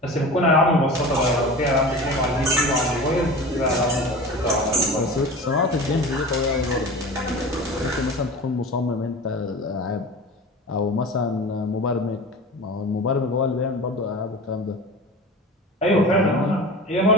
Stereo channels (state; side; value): normal; both; correlation 0.34